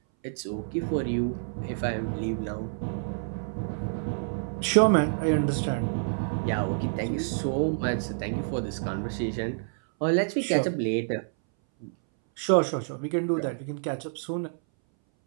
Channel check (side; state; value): left; silent; 59 dB below the other